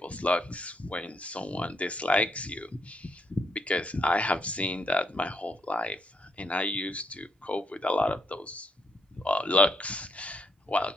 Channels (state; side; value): normal; both; correlation 0.75